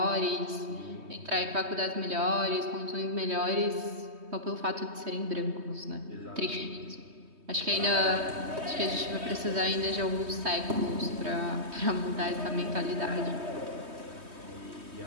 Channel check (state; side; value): late; left; 3.2 ms